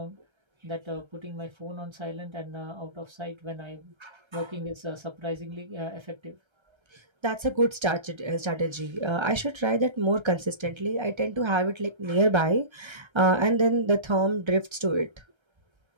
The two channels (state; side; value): late; left; 1.3 ms